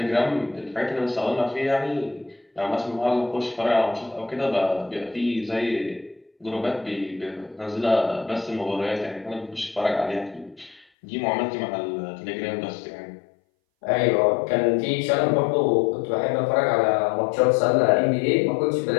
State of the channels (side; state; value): right; drops out; at 10.9 s